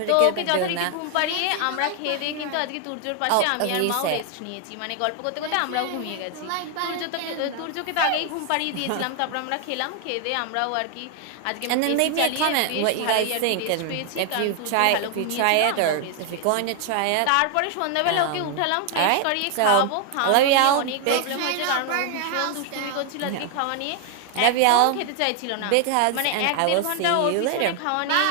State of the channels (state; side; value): different; both; correlation 0.00